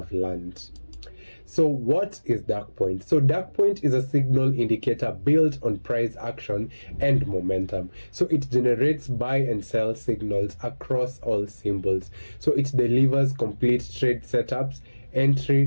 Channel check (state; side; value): inverted; both; correlation -1.00